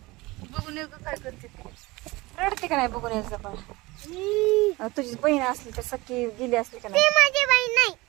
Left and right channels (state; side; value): quieter; left; 21.9 dB